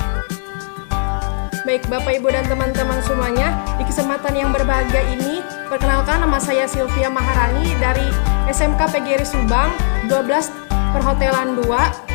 baik Bapak, Ibu, dan teman-teman semuanya, di kesempatan yang berbahagia ini, perkenalkan, nama saya Sylvia Maharani dari SMK PGRI Subang 12 Perhotelan 2.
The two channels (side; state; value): right; silent; 68 dB below the other